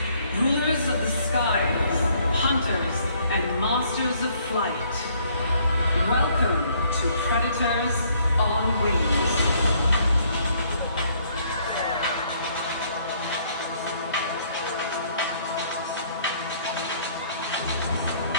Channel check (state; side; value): inverted; both; correlation -0.65